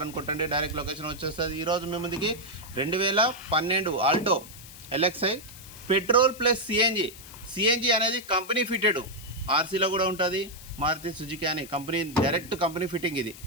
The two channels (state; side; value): noise; left; hiss, 17 dB below the sound